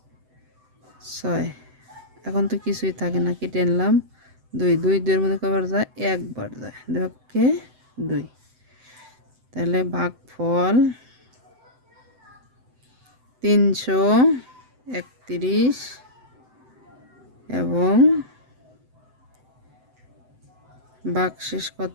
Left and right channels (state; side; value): late; left; 7.9 ms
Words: 6। এখন তো কিছুই থাকে না, কেটে আনলাম 2, 2 2-এর মধ্যে কয়বার যায়? একবার যায়। 2 কে 2। তাহলে ভাগফল 331 এবং ভাগশেষ